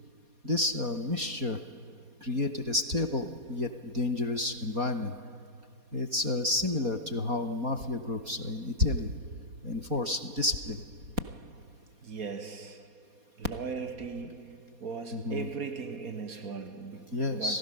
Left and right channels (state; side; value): late; left; 4.2 ms